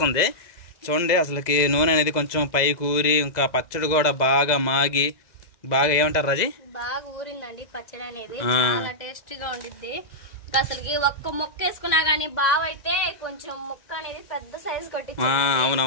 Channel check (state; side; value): late; right; 2.0 ms